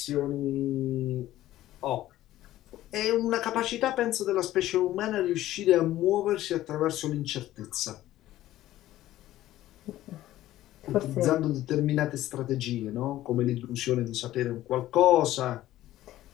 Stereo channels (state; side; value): quieter; right; 14.5 dB